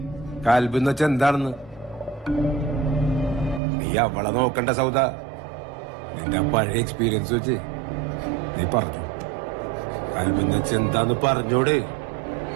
കൽബെന്ന് വെച്ച എന്താണെന്ന്. നീ അവളെ നോക്കണ്ട സൗദ. നിന്റെ പഴയ എക്സ്പീരിയൻസ് വെച്ച് നീ പറഞ്ഞു കൽബെന്ന് വെച്ച എന്താന്ന് പറഞ്ഞോട്.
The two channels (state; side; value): drops out; left; at 3.6 s